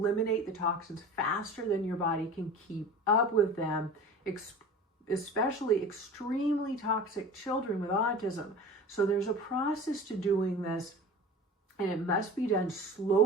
the toxins faster than your body can keep up with them, especially extremely toxic children with autism. So there's a process to doing this, and it must be done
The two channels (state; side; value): normal; both; correlation 0.37